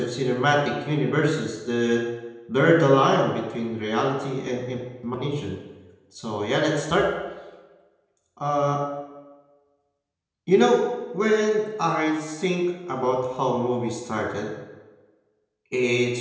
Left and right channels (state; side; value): identical; both; correlation 1.00